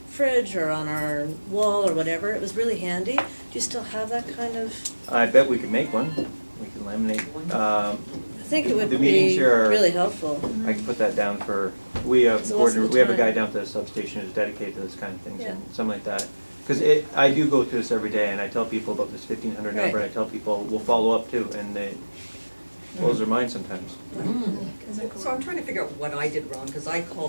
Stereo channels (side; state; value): both; inverted; correlation -1.00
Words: fridge or on our wall or whatever. It was really handy. Do you still have that kind of? I bet we could make one. We could laminate. I think it would The meetings be here are- really helpful. I can put that down for, we have So what's the a guy time? down at the substation who's dedicated to this kind of things Yeah. and something like that. Because I do go through this every day and I tell people about this 1500 number, Right. and I tell people, we'll follow up too, and they blows their mind sometimes. So I'm trying to figure out what I did wrong, because I